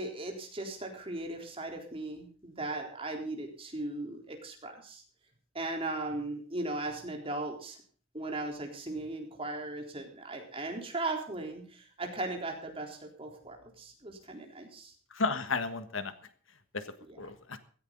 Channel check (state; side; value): normal; both; correlation 0.08